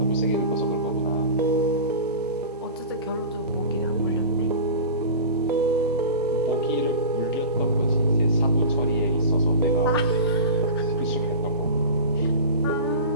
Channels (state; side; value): inverted; both; correlation -0.32